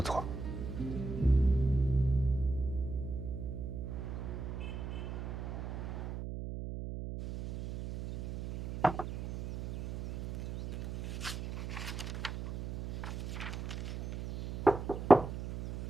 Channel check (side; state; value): right; noise; hum, 6 dB below the sound